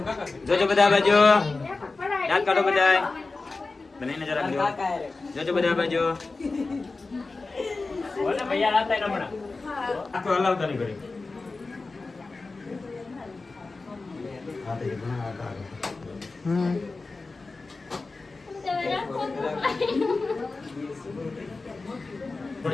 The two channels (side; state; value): right; quieter; 3.7 dB